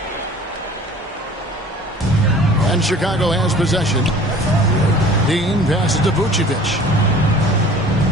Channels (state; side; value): normal; both; correlation 0.46